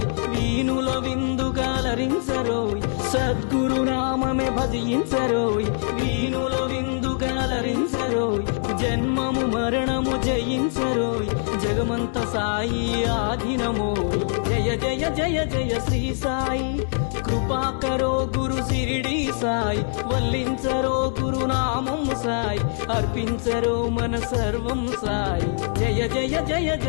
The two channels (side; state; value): right; silent; digital silence